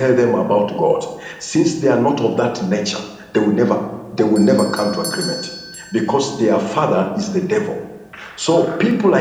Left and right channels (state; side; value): identical; both; correlation 1.00